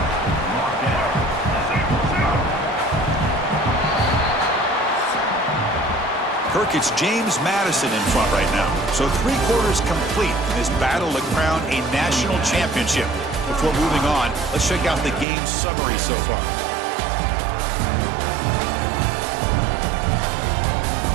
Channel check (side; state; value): left; drops out; at 15.2 s